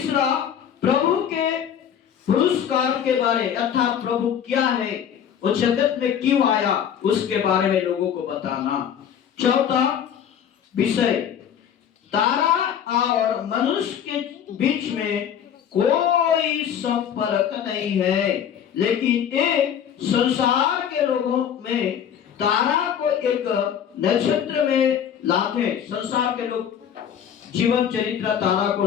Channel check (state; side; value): quieter; right; 8.8 dB